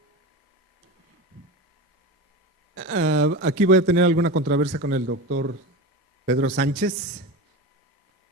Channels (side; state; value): both; normal; correlation 0.25